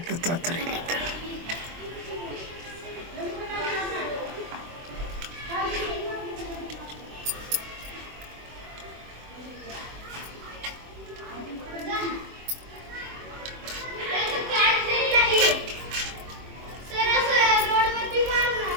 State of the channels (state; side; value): late; left; 24 ms